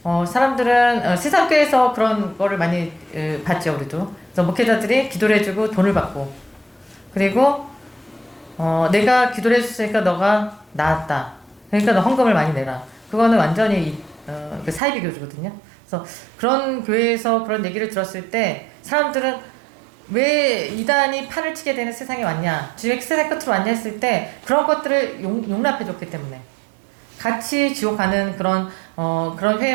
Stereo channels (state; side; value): drops out; left; at 14.8 s